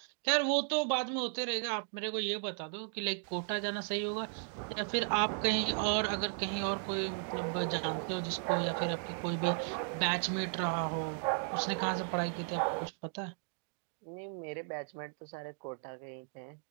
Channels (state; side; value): silent; left; 54 dB below the other